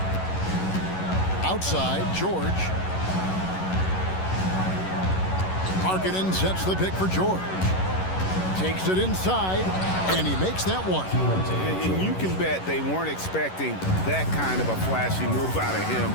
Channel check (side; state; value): right; late; 11 ms